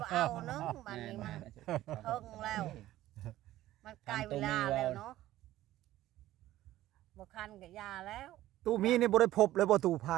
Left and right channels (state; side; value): quieter; left; 14.7 dB